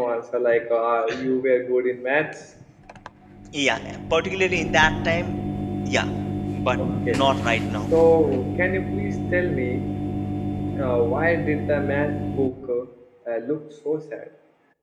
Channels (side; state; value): both; identical; correlation 1.00